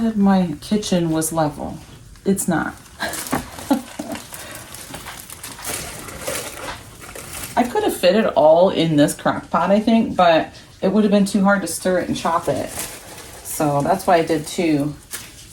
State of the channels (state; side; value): identical; both; correlation 1.00